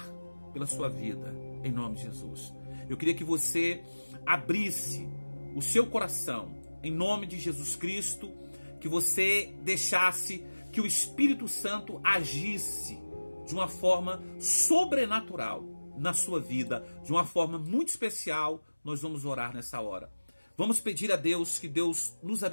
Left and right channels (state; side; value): inverted; both; correlation -1.00